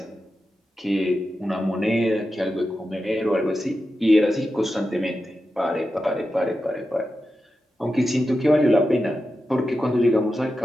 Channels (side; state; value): both; normal; correlation 0.90